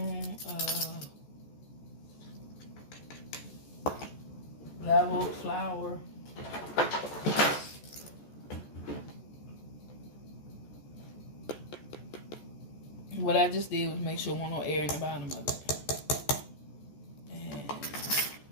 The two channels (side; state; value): right; late; 14 ms